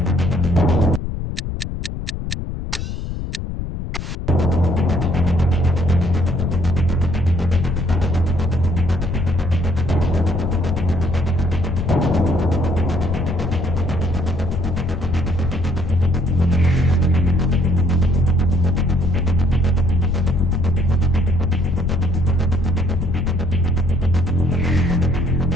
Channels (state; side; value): noise; left; rumble, 5 dB below the sound